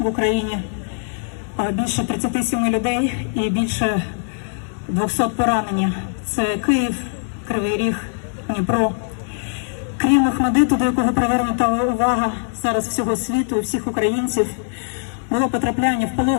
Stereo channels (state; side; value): silent; right; digital silence